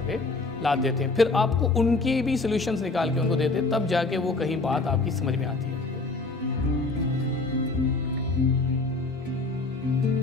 पे लाद देते हैं। फिर आपको उनकी भी सॉल्यूशंस निकाल के उनको देते, तब जाके वो कहीं बात आपकी समझ में आती है।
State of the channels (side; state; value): right; quieter; 3.5 dB